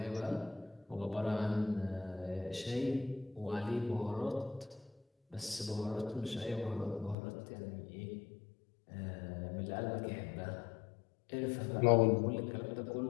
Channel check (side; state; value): right; drops out; at 7.2 s